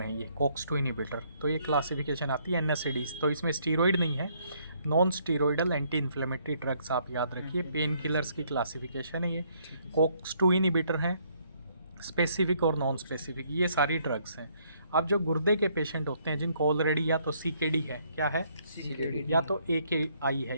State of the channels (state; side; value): inverted; both; correlation -0.68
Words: ये COX-2 इनिबिटर. तो ये क्लासिफिकेशन आती है NSAIDs. तो इसमें स्टीरॉइड नहीं है, नॉन स्टीरॉइडल एंटी इन्फ्लेमेटरी ड्रग्स आप याद रखिए. पेन किलर्स की क्लासिफिकेशन है ये. COX-2 इनिबिटर हैं, स्पेसिफिक और नॉन स्पेसिफिक, ये सारी ड्रग्स हैं. अब जो गुर्दे के पेशेंट होते हैं जिनको ऑलरेडी या तो CKD है, क्या है CKD, या तो AKI है.